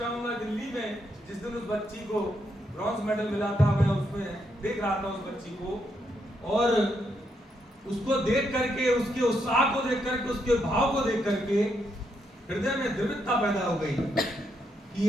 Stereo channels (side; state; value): both; normal; correlation 0.78